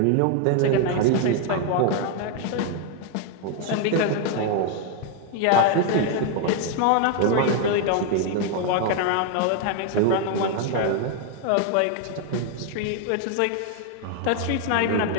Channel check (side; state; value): both; different; correlation 0.00